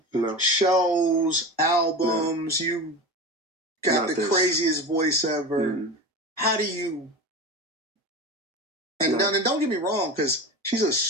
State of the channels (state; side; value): normal; both; correlation 0.27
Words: No. Shows, albums. No. You got not the this. Craziest voice ever. How do you? And don't get me wrong, because she's a